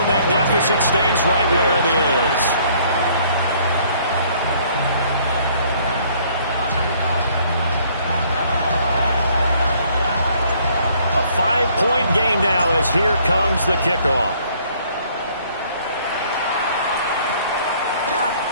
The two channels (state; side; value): inverted; both; correlation -0.61